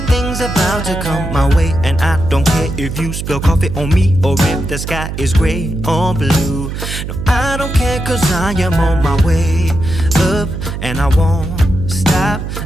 about to come my way, and I don't care if you spill coffee on me or if the sky is gray or blue. No, I don't care, cause I am on my way up, and I won't stop,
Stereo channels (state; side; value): noise; right; hum, 6 dB below the sound